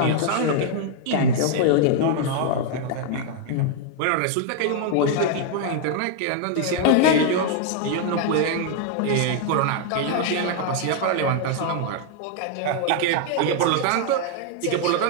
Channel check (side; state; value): both; different; correlation 0.00